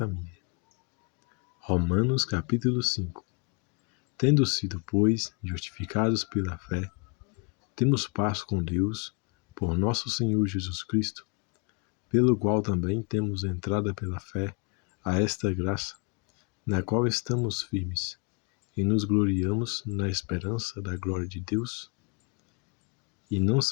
Romanos capítulo 5. Tendo sido, pois, justificados pela fé, temos paz com Deus, por nosso Senhor Jesus Cristo, pelo qual também temos entrada pela fé a esta graça, na qual estamos firmes, e nos gloriamos na esperança da glória de Deus. E não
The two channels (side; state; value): right; quieter; 34.3 dB